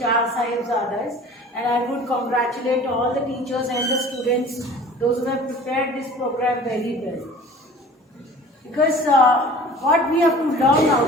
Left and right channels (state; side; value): normal; both; correlation 0.44